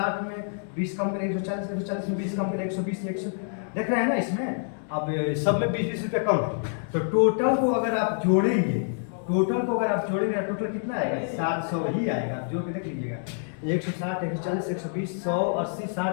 में 20 कम करें 140, 140 में 20 कम करें 120, 100 देख रहे हैं ना इसमें। अब सब में 20-20 रुपया कम है, तो टोटल को अगर आप जोड़ेंगे, टोटल कितना आएगा, 700 ही आएगा। जोड़ के देख लीजिएगा, 160, 140, 120, 100, 80,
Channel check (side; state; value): right; silent; digital silence